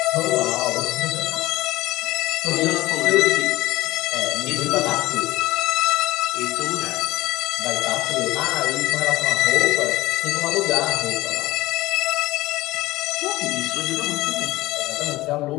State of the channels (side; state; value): right; quieter; 18.1 dB